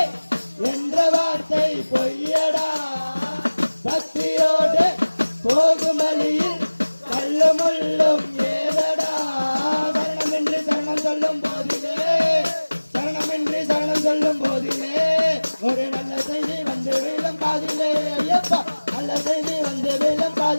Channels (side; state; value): both; inverted; correlation -1.00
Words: என்ற வார்த்தை பொய்யடா பக்தியோடு போகும் வழியில் கல்லு முள்ளும் ஏதடா சரணமின்றி சரணம் சொல்லும் போதிலே சரணமின்றி சரணம் சொல்லும் போதிலே ஒரு நல்ல செய்தி வந்து வீழும் காதிலே ஐயப்பா நல்ல செய்தி வந்து வீழும்